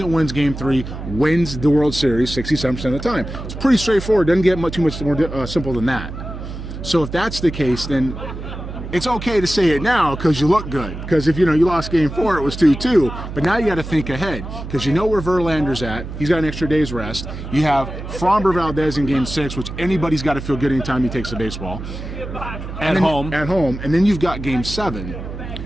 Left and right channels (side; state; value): right; noise; hum, 9 dB below the sound